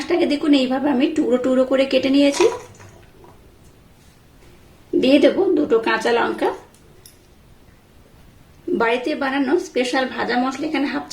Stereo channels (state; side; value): identical; both; correlation 1.00